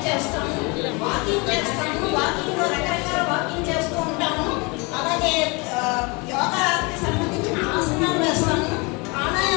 చేస్తాము, వాకింగ్ చేస్తాము. వాకింగ్లో రకరకాల వాకింగ్ చేస్తూ ఉంటాము. అలాగే యోగాకి సంబంధించిన ఆసనాలు వేస్తాము,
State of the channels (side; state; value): right; quieter; 28.3 dB